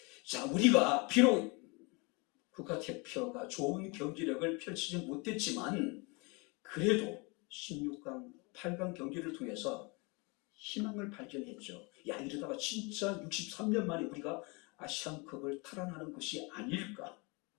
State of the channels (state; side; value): quieter; right; 29.1 dB